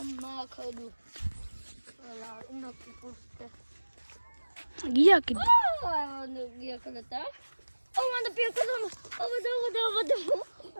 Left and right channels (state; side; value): inverted; both; correlation -1.00